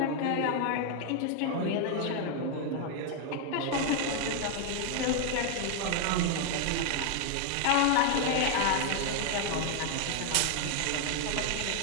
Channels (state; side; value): different; both; correlation 0.00